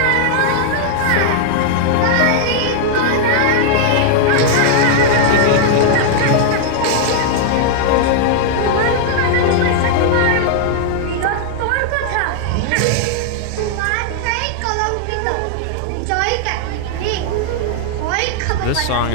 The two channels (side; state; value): both; different; correlation -0.01